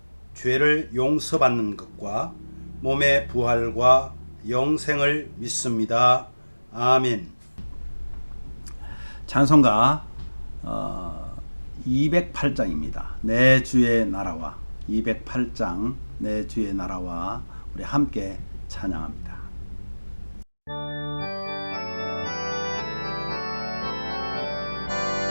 죄를 용서받는 것과 몸의 부활과 영생을 믿습니다. 아멘. 찬송가 208장입니다. 내 주의 나라와 208장 내 주의 나라와 우리 함께 찬양합니다.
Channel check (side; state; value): both; inverted; correlation -1.00